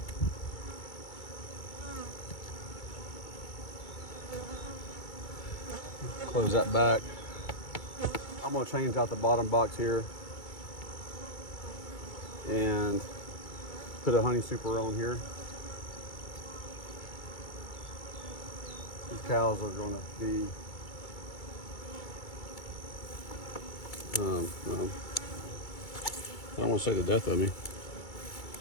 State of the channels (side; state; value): right; late; 2.3 ms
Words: Close that back. I'm going to change out the bottom box here and put a honey super on here. These cows are going to be I don't want to say the death of me. It